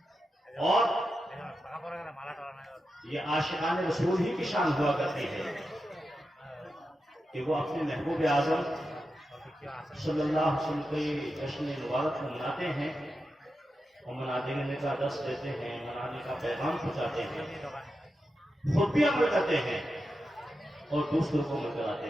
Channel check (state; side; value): normal; both; correlation 0.89